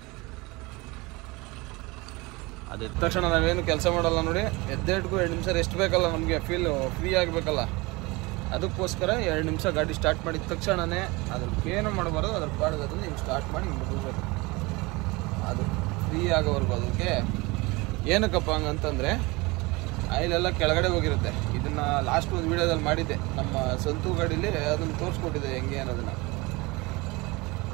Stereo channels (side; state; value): left; quieter; 24.1 dB